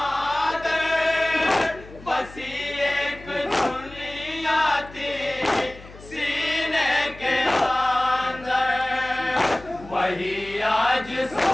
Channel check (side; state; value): left; noise; hum, 19 dB below the sound